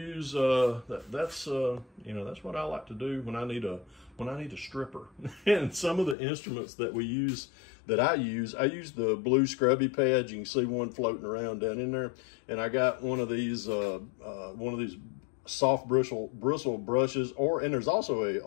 That's what I like to do when I need a stripper. And some of the instruments that we use, I use the blue scrubby pads. You can see one floating around down in there. And I got one of these soft bristle brushes, and there's also a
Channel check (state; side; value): drops out; right; at 6.2 s